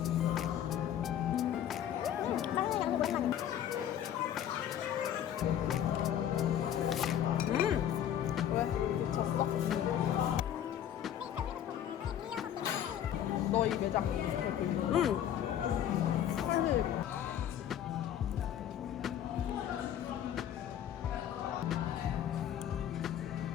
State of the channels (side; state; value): right; quieter; 10.4 dB